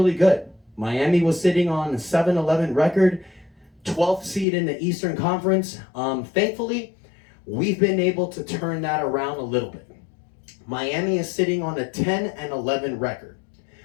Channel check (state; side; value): drops out; right; at 4.5 s